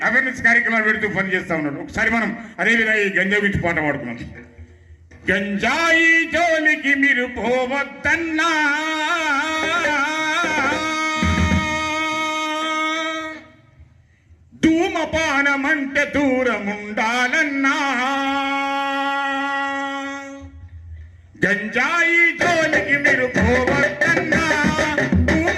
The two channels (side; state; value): both; identical; correlation 1.00